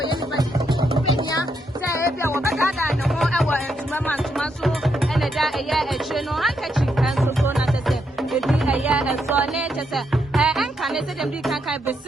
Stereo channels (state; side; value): normal; both; correlation 0.78